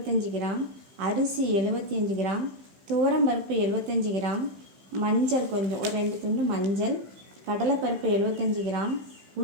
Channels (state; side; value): late; left; 15 ms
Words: கிராம், அரிசி 75 கிராம், துவரம்பருப்பு 75 கிராம், மஞ்சள் கொஞ்சம் ஒரு 2 துண்டு மஞ்சள், கடலைப்பருப்பு 75 கிராம்,